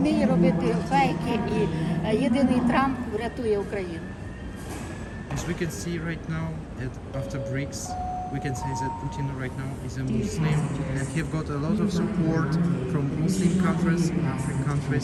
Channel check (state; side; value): identical; both; correlation 1.00